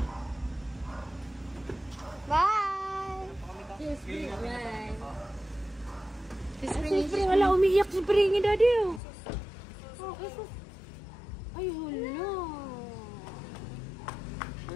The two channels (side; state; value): right; drops out; at 9.0 s